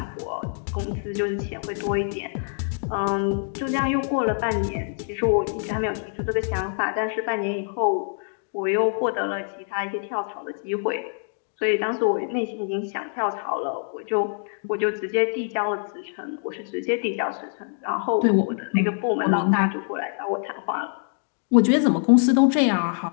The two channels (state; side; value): silent; right; digital silence